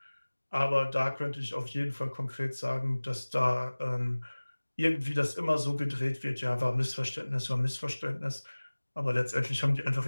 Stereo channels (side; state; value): both; inverted; correlation -1.00